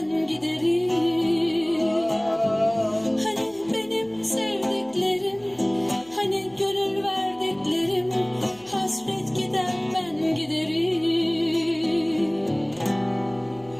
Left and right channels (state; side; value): noise; right; hum, 28 dB below the sound